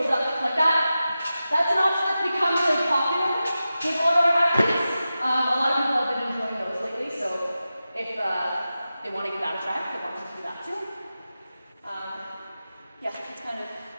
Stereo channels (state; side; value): inverted; both; correlation -0.93